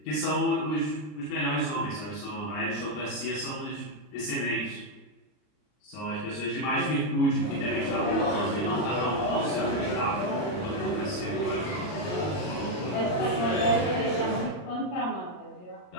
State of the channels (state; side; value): late; right; 39 ms